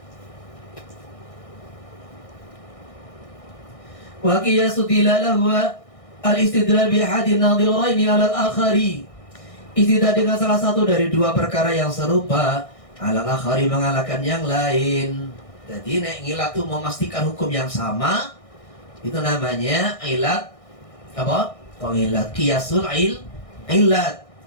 Wa qiyasu dilalahu al-istidlal bi ahadin nadhiraini 'ala al-akhari. Istidlal dengan salah satu dari dua perkara yang serupa, 'ala al-akhari mengalahkan yang lain. Jadi nek ngilat itu memastikan hukum yang sama, itu namanya ilat apa? Pengilat qiyasul ilat.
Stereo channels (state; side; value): late; right; 1.6 ms